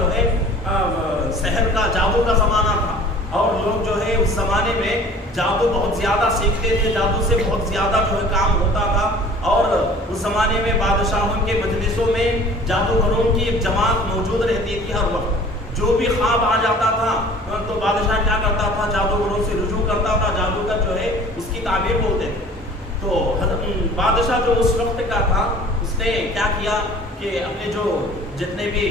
ہے سحر کا، جادو کا زمانہ تھا، اور لوگ جو ہے اس زمانے میں جادو بہت زیادہ سیکھتے تھے، جادو سے بہت زیادہ جو ہے کام ہوتا تھا، اور اس زمانے میں بادشاہوں کے مجلسوں میں جادوگروں کی ایک جماعت موجود رہتی تھی ہر وقت۔ جو بھی خواب آ جاتا تھا تو بادشاہ کیا کرتا تھا، جادوگروں سے رجوع کرتا تھا، جادوگر جو ہے اس کی تعبیر بولتے تھے۔ تو بادشاہ جو اس وقت کا تھا اس نے کیا کیا کہ اپنے جو جتنے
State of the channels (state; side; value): normal; both; correlation 0.47